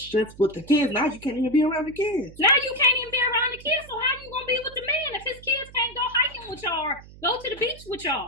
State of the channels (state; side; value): noise; right; hum, 20 dB below the sound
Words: with the kids. Now you can't even be around the kids. Now you can't even be around the kids. So how you going to be with the man if his kids can't go hiking with y'all or go to the beach with